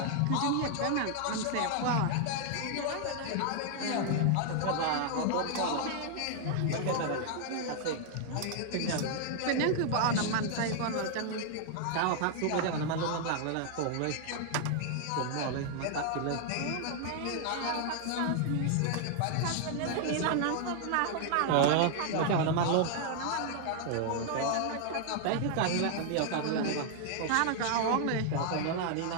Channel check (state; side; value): different; both; correlation 0.00